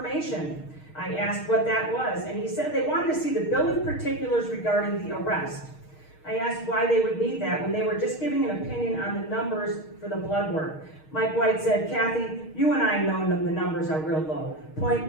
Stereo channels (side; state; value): right; late; 6.4 ms